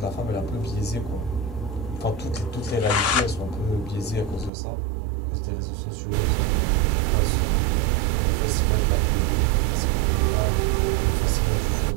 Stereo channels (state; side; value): drops out; left; at 4.5 s